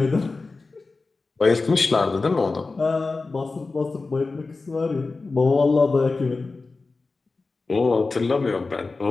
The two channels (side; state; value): right; quieter; 3.8 dB